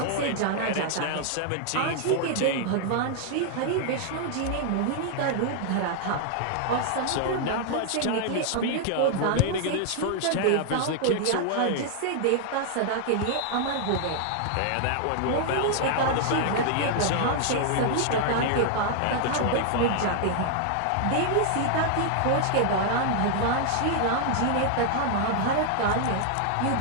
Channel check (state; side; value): different; both; correlation 0.00